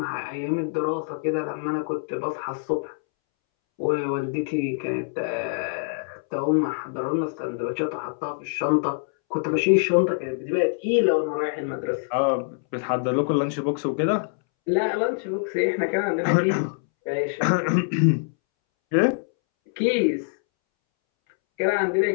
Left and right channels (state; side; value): silent; right; 62 dB below the other